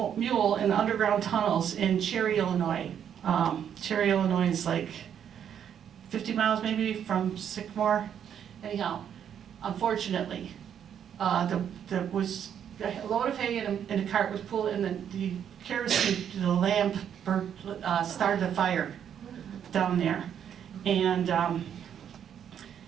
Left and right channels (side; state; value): left; quieter; 8.9 dB